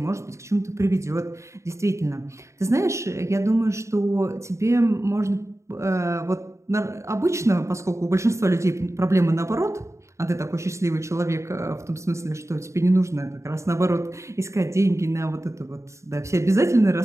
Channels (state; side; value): late; left; 0.14 ms